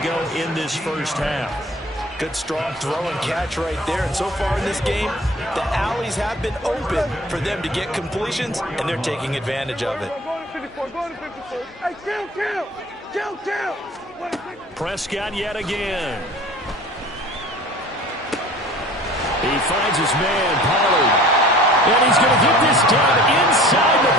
go in this first half. Good, strong throw and catch right there. And so far in this game, the alleys have been open for them to get completions, and they're taking advantage of it. Prescott yet again. He finds his man, Pollard. And he's going to get this done inside the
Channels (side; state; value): both; normal; correlation 0.45